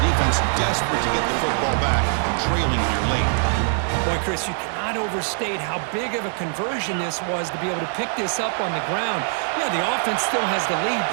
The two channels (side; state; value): left; silent; 58 dB below the other